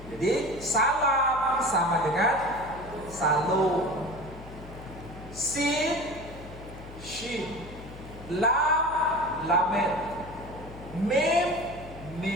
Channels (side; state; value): left; noise; hum, 15 dB below the sound